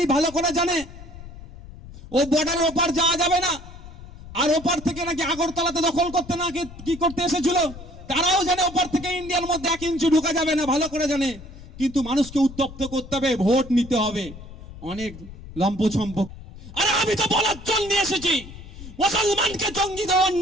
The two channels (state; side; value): noise; left; rumble, 15 dB below the sound